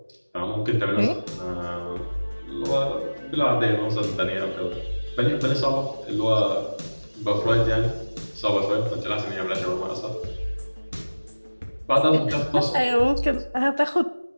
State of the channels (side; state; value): both; inverted; correlation -1.00